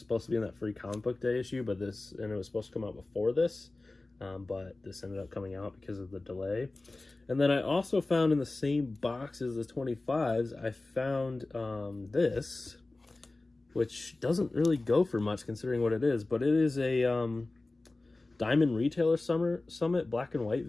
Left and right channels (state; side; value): quieter; right; 3.1 dB